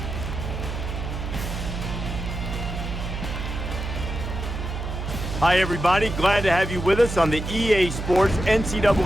Hi, everybody. Glad to have you with us on the EA Sports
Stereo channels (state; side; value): noise; right; hum, 5 dB below the sound